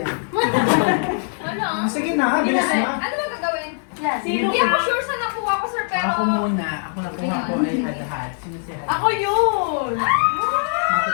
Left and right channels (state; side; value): silent; right; 65 dB below the other